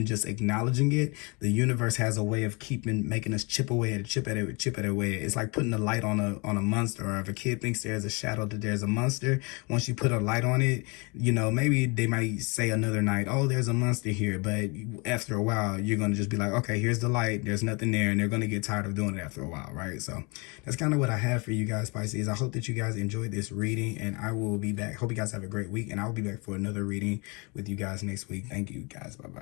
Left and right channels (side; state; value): right; quieter; 29.7 dB